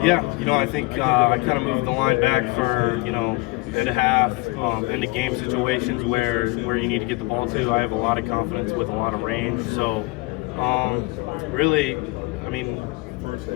Yeah, I think I kind of moved the line back for, and a half into game situations where you need to get the ball to. I have a lot of confidence with a lot of range. So, really,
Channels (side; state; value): right; quieter; 24.4 dB